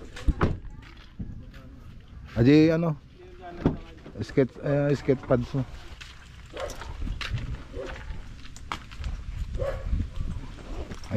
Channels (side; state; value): both; identical; correlation 1.00